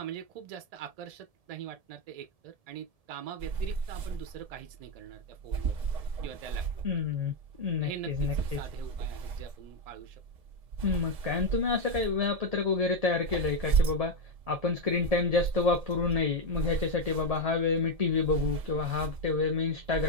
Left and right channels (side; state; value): left; late; 1.7 ms